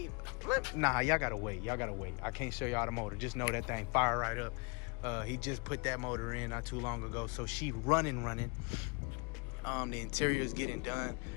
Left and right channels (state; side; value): quieter; right; 30.5 dB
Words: nah, y'all gotta wait. I can't show y'all the motor. Just know that thing fire right up. He just put that motor in not too long ago, so she running. The interior is getting done